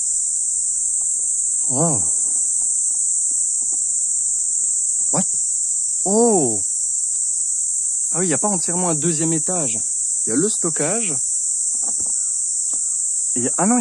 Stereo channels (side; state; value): both; identical; correlation 1.00